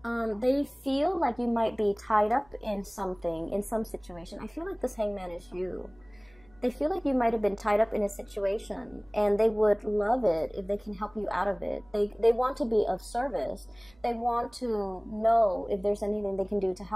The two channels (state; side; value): noise; right; hum, 29 dB below the sound